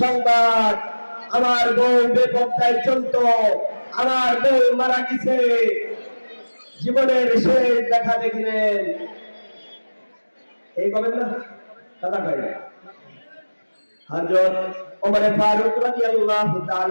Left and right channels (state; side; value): inverted; both; correlation -1.00